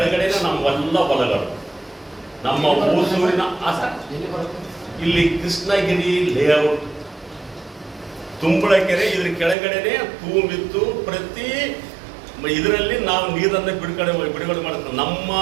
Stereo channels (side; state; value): left; drops out; at 9.6 s